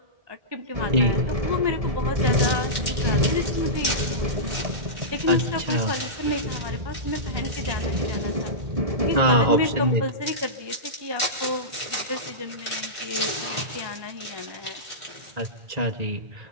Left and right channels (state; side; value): late; left; 1.8 ms